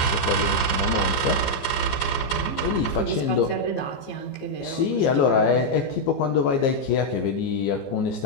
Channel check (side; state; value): right; late; 15 ms